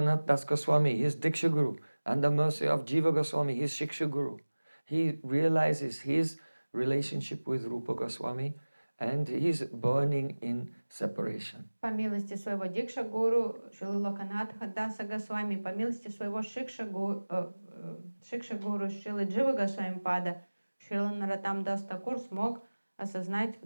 Das Goswami, his Diksha Guru, and the mercy of Jiva Goswami, his Shiksha Guru, he realizes his relationship with Rupa Goswami and he's burning in separation. По милости своего Дикша Гуру, Шрилы Локанатха Даса Госвами, по милости своего Шикша Гуру, Шрилы Джива Госвами Пада, Шрила Наратам Дас Такур смог осознать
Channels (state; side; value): inverted; both; correlation -1.00